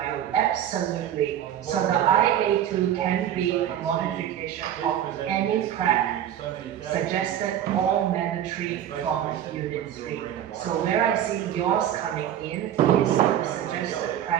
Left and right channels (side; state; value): left; quieter; 10.7 dB